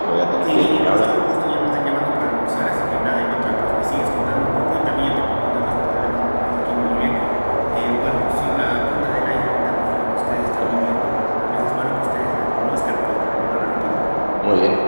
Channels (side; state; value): both; inverted; correlation -1.00